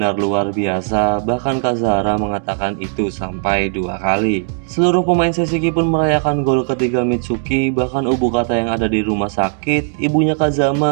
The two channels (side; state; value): left; silent; digital silence